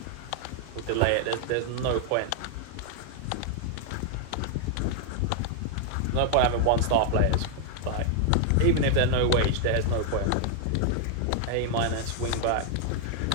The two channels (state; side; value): different; both; correlation 0.00